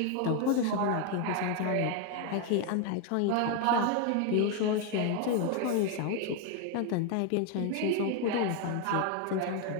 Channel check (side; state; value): both; different; correlation 0.01